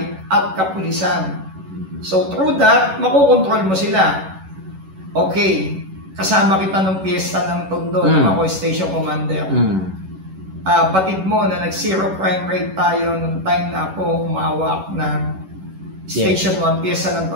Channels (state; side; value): late; left; 11 ms